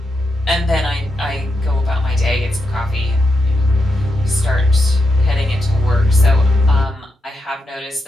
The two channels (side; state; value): both; normal; correlation 0.85